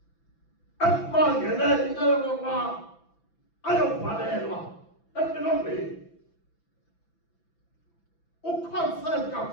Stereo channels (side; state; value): right; late; 5.9 ms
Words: ekubangele into yokokuba ayobhalelwa empilongweni, ukhonsent